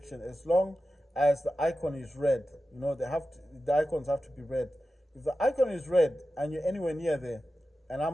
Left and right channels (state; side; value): normal; both; correlation 0.92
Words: as long as the icon is red, the icons have to be red. If the icon is red and you're anywhere near there, and